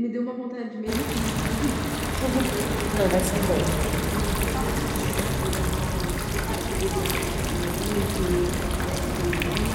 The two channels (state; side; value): identical; both; correlation 1.00